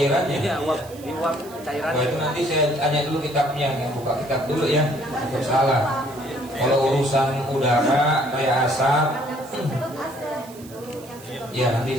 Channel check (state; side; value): noise; right; hiss, 21 dB below the sound